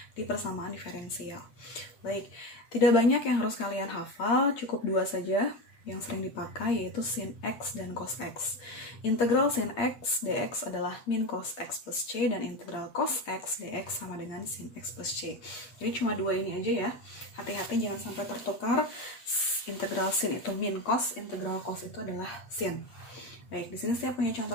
di persamaan diferensial. Baik, tidak banyak yang harus kalian hafal, cukup 2 saja yang sering dipakai, yaitu sin x dan cos x. Integral sin x dx adalah min cos x plus c, dan integral cos x dx sama dengan sin x plus c. Jadi cuma 2 ini aja ya. Hati-hati jangan sampai tertukar. Integral sin itu min cos, integral cos itu adalah sin. Baik, di sini saya punya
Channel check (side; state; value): right; late; 8.6 ms